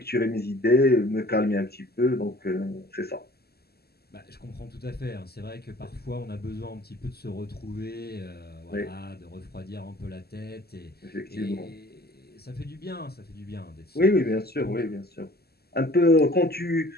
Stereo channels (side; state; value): right; late; 0.46 ms